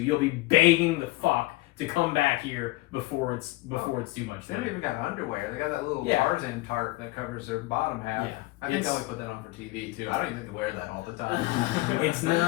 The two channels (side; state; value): right; quieter; 20.1 dB